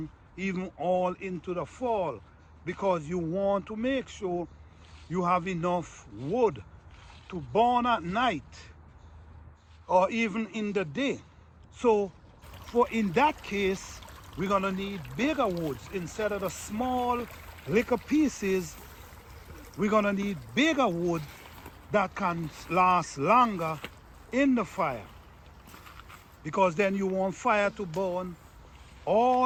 even all into the fall, because you want to make sure you have enough wood to burn at night or even in the day. So in that case, we're going to need bigger woods instead of the small little pieces. We're going to need bigger wood that can last longer in the fire, because then you want fire to burn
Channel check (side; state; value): both; identical; correlation 1.00